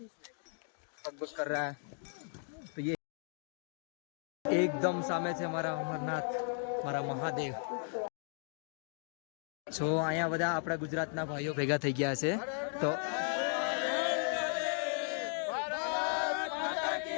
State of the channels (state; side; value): silent; right; 54 dB below the other